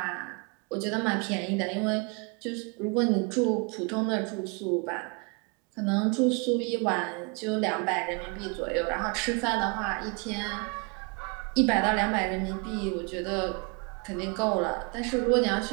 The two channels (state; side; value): quieter; left; 32.5 dB